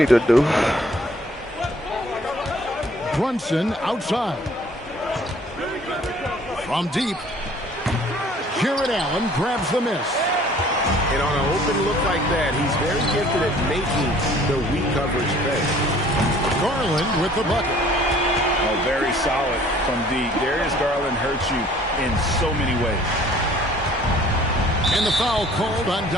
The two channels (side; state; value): both; normal; correlation 0.54